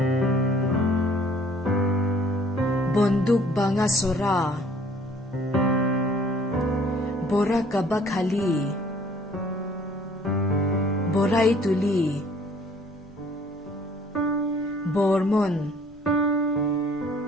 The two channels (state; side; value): normal; both; correlation 0.57